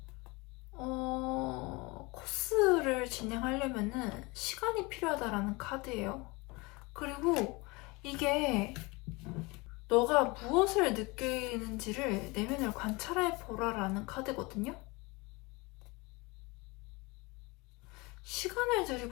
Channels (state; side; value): quieter; right; 25.4 dB